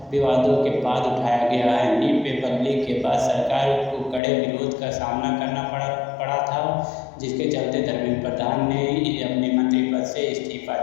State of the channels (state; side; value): drops out; right; at 4.2 s